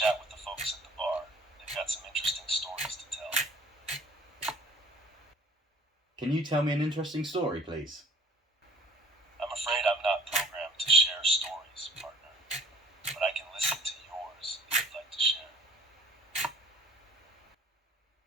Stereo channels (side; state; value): both; normal; correlation 0.53